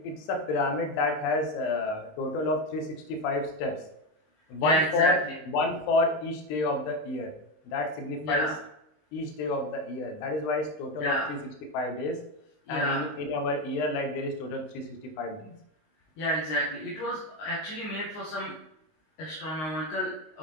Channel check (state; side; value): late; right; 20 ms